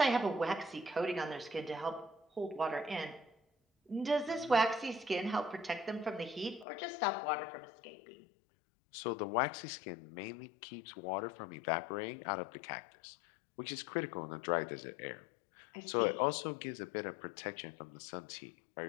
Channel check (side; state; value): right; drops out; at 6.7 s